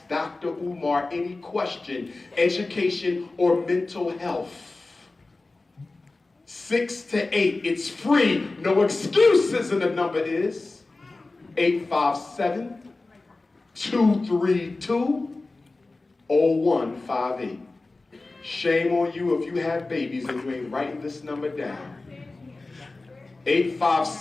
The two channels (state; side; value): quieter; right; 3.3 dB